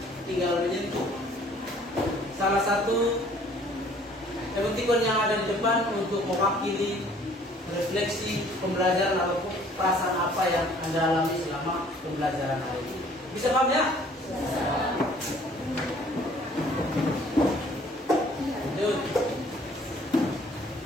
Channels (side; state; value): both; normal; correlation 0.56